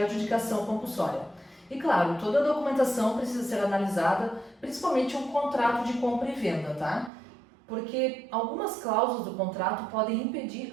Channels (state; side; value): drops out; left; at 7.1 s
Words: compulsória. E claro, toda a documentação precisa ser analisada, principalmente um contrato de compra e venda, tá? Porque algumas cláusulas do contrato podem impedir